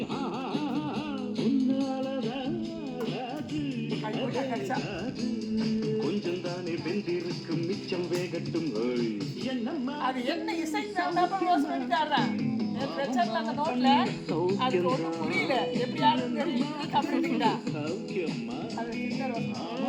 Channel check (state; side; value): identical; both; correlation 1.00